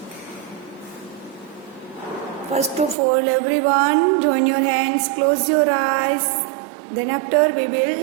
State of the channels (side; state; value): left; drops out; at 3.0 s